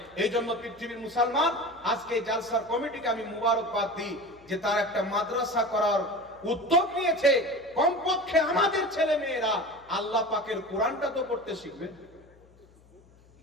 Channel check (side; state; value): left; noise; hum, 28 dB below the sound